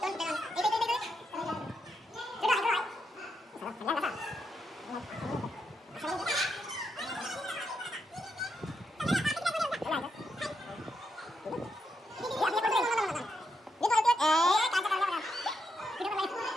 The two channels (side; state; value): both; normal; correlation 0.82